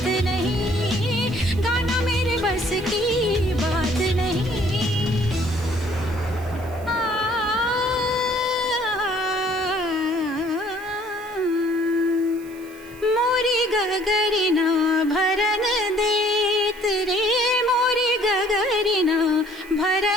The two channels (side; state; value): right; noise; hiss, 23 dB below the sound